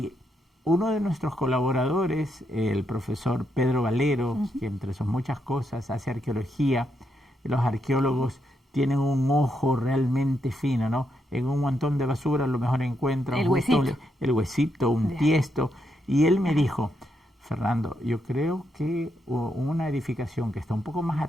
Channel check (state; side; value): normal; both; correlation 0.80